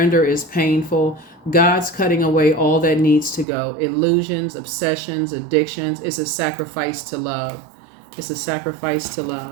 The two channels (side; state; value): left; drops out; at 3.5 s